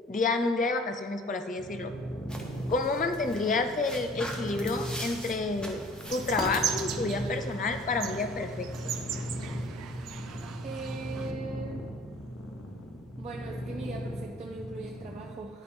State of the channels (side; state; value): both; normal; correlation 0.51